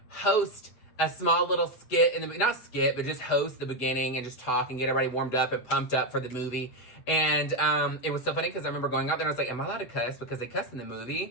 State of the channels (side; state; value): right; late; 8.0 ms